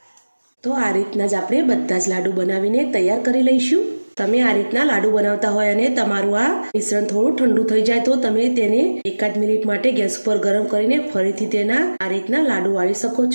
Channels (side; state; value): both; inverted; correlation -1.00